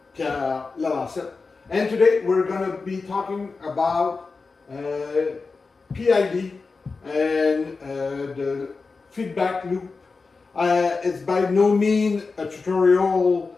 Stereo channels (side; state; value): right; quieter; 4.3 dB